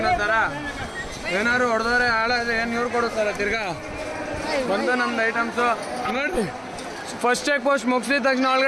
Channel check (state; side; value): identical; both; correlation 1.00